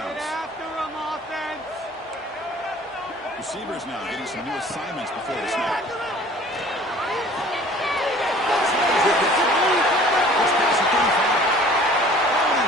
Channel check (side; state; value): both; normal; correlation 0.49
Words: Receivers now getting some new assignments before the snap.